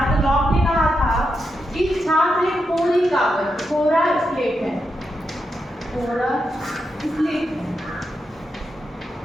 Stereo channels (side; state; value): both; normal; correlation 0.85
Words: लॉक ने कहा था कि छात्र एक कोरी कागज, कोरा स्लेट है, कोरा स्लेट है,